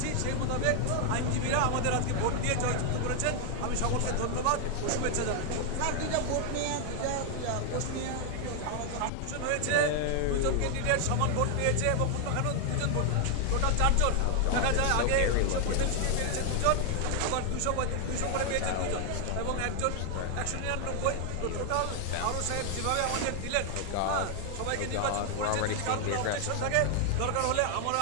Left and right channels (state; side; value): different; both; correlation 0.00